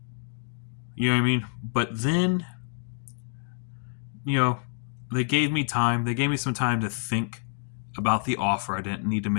You know what I mean? But then, they gave me time. They gave me some time to think about the offer. I didn't need to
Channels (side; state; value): right; silent; digital silence